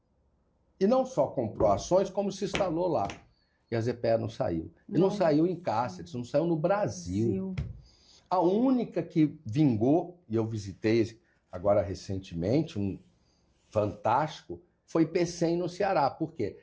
E não só comprou ações, como se instalou lá. E a ZPE não saiu. E não saiu em Cáceres, não saiu no Brasil. A única que vingou, e eu visitei agora recentemente, um fantástico, foi Pecém no Ceará. Por quê?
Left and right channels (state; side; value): identical; both; correlation 1.00